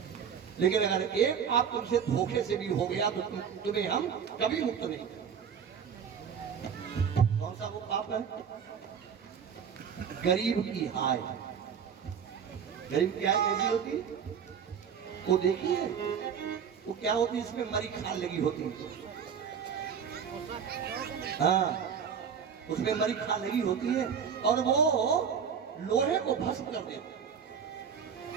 लेकिन अगर एक पाप तुमसे धोखे से भी हो गया तो तुम्हें हम कभी मुक्त नहीं करेंगे। कौन सा वो पाप है? गरीब की हाय। गरीब की हाय कैसी होती है? वो देखिए, वो क्या होती है, इसमें मरी खाल लगी होती है। हाँ, उसमें मरी खाल लगी होती है और वो लोहे को भस्म कर देती है।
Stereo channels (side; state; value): left; quieter; 7.3 dB